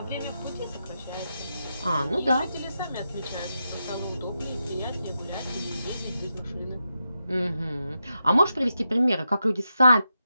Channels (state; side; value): inverted; both; correlation -0.87